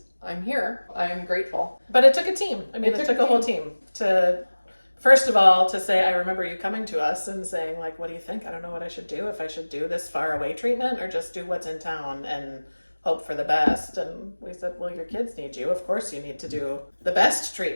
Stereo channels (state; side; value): inverted; both; correlation -1.00